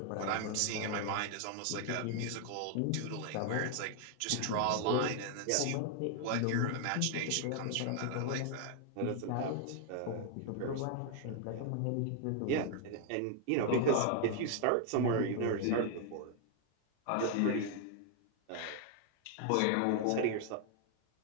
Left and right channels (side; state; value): both; different; correlation 0.00